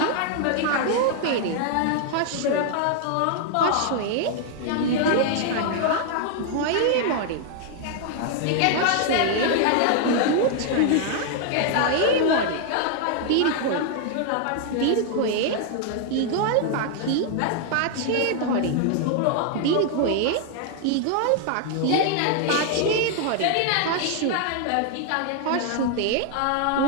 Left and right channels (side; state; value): both; different; correlation 0.00